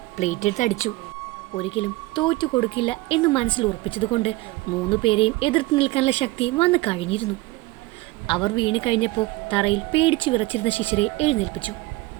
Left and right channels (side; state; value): left; quieter; 20.4 dB